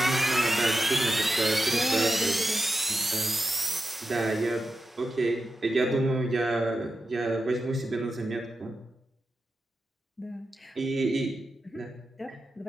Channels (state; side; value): normal; both; correlation 0.89